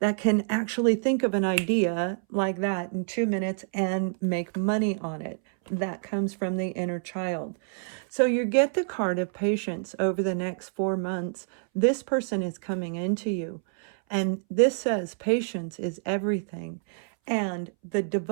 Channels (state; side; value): silent; left; 60 dB below the other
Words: can actually think of an idea like that in 2 minutes and make money on it. That comes from the inner child. So you get the card of patience over the next 4 months. This person is coming into you. And this says patience is everything. And the